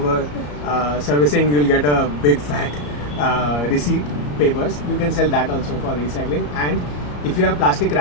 servicing, you'll get a big fat receipt papers. You can sell that also for recycling. And if you have plastic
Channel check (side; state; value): right; late; 34 ms